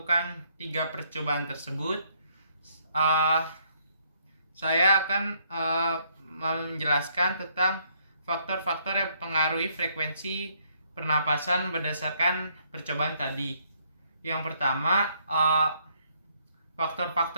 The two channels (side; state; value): both; inverted; correlation -0.69